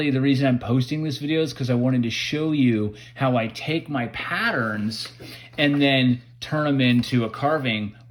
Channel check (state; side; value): identical; both; correlation 1.00